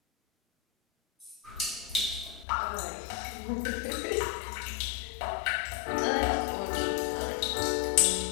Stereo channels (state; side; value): drops out; right; at 2.5 s